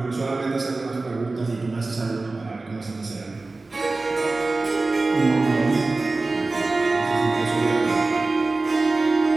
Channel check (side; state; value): left; quieter; 3.4 dB